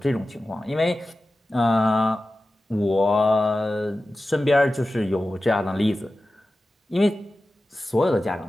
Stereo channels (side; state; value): both; normal; correlation 0.94